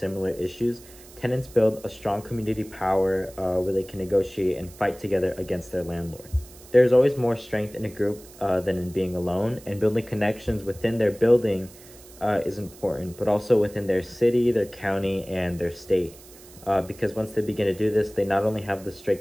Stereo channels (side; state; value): right; noise; hiss, 21 dB below the sound